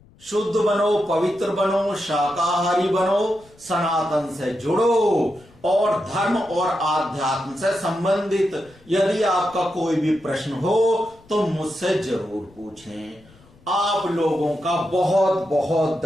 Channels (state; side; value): noise; left; rumble, 27 dB below the sound